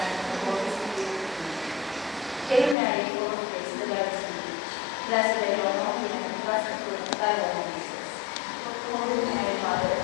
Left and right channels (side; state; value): right; drops out; at 2.8 s